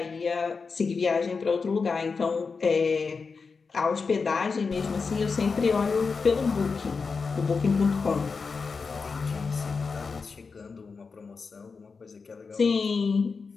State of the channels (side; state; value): right; quieter; 4.9 dB